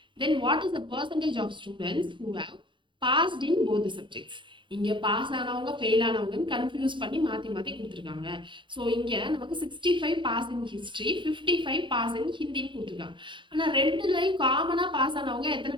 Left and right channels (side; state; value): left; late; 0.23 ms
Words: then what is the percentage of students who have passed in both the subjects? இங்க pass ஆனவங்க fail ஆனவங்கன்னு confuse பண்ணி மாற்றி மாற்றி கொடுத்துருக்காங்க. So இங்கே நமக்கு 65 pass in history, 55 pass in ஹிந்தின்னு கொடுத்துருக்காங்க. ஆனால் ரெண்டுலையும் காமனாக பாஸ் ஆனவங்க எத்தனை